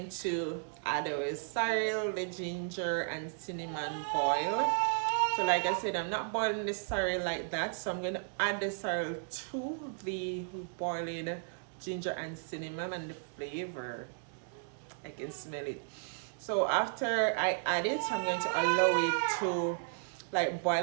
to add our sorrel, the ginger and cinnamon boil. So like I said, I'm not boiling the sorrel like that, so I'm going to add the sorrel to the boiling ginger and cinnamon, and the flavor, I can smell it. So after I add it, I'm going to allow it to like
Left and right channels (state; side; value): silent; left; digital silence